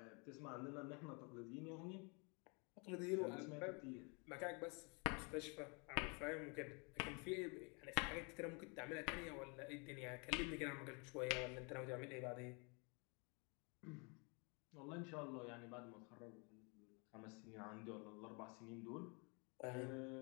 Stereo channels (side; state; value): right; quieter; 32.8 dB